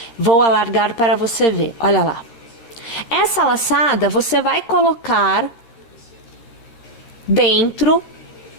Vou alargar para você ver, olha lá. Essa laçada você vai colocar dentro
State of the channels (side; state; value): right; late; 13 ms